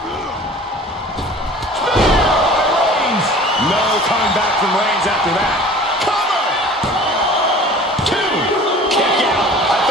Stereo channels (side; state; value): both; normal; correlation 0.44